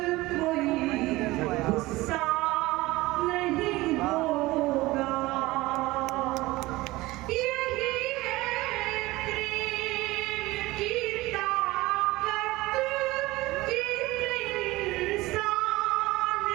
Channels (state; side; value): quieter; left; 19.6 dB